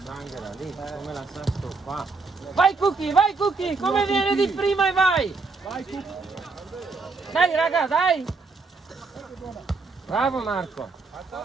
lì, come la sa stoppare. Vai Cookie, come viene di prima e vai! Dai raga, dai! Bravo Marco!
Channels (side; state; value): left; quieter; 4.1 dB